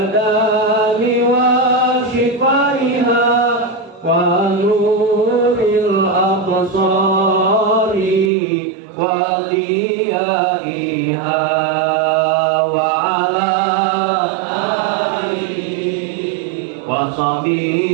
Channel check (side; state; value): left; drops out; at 8.3 s